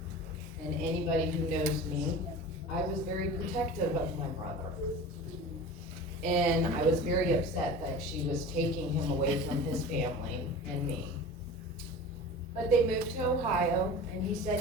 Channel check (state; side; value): normal; both; correlation 0.35